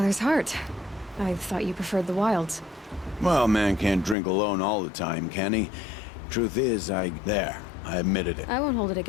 Heart. I thought you preferred the wilds. Well, man can't drink alone all the time, can he? Truth is, I admitted it. I won't hold it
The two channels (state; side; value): drops out; right; at 4.2 s